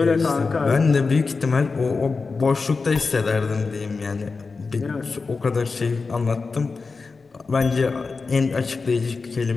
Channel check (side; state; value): right; quieter; 4.3 dB